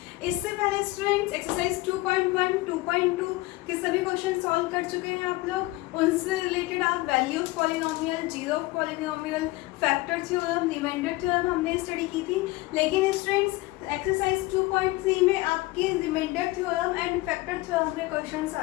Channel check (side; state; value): right; quieter; 20.0 dB